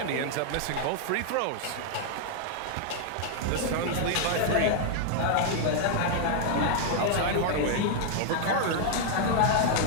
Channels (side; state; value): both; different; correlation 0.00